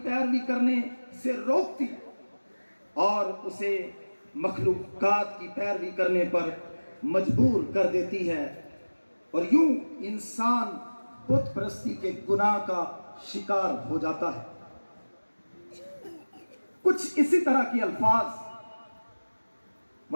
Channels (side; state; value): both; inverted; correlation -1.00